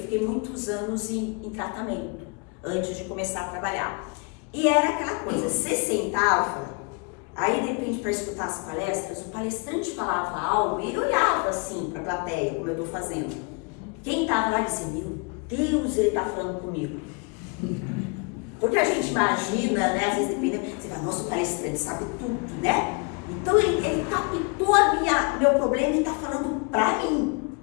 muitos anos em tratamento, antes de começar a trabalhar. E era aquela coisa, você sentava, aí de repente para escutar as palestras, o palestrante falava algo e ele olhava assim para a plateia, como eu estou fazendo. Quem estava lá dizia: meu Deus, ele está falando comigo. Porque a gente imagina, né, às vezes dependendo, você fala: nossa, o palestrante sabe tudo, né? Então ele captou meu problema e está falando para mim.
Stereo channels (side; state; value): right; quieter; 32.5 dB